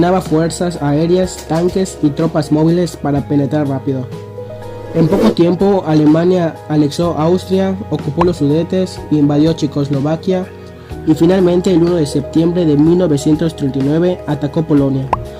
fuerzas aéreas, tanques y tropas móviles para penetrar rápido. En poco tiempo, Alemania anexó Austria, ocupó los Sudetes, invadió Checoslovaquia y finalmente el 1 de septiembre de 1939 atacó Polonia.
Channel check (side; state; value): both; identical; correlation 1.00